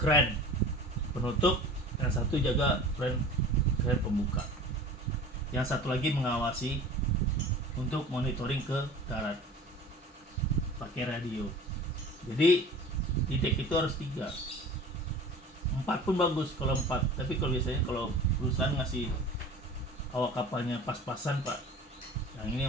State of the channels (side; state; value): both; normal; correlation 0.41